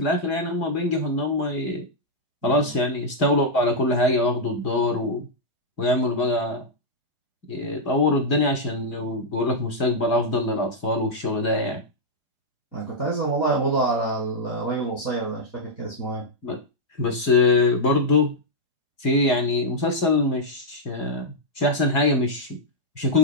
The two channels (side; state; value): right; late; 2.2 ms